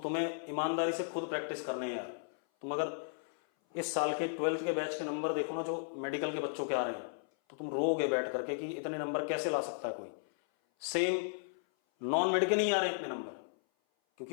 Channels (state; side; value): silent; right; 54 dB below the other